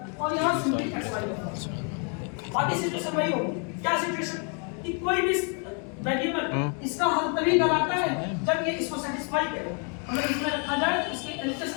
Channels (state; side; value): quieter; right; 38.6 dB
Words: और यहां सिंपली xy होगा। बाकी सिचुएशन वही होगी। क्या सिचुएशन? कि कोई भी वेरिएबल इसका हल तभी कहलाता है जब ये इसको सेटिस्फाई करे, अगर इसमें रखा जाए तो इसके LHS